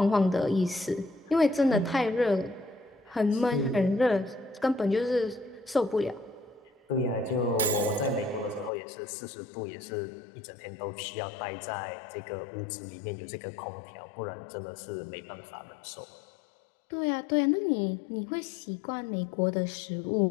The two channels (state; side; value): drops out; right; at 8.7 s